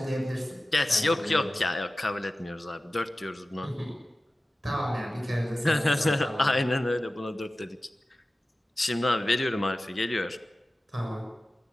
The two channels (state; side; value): normal; both; correlation 0.96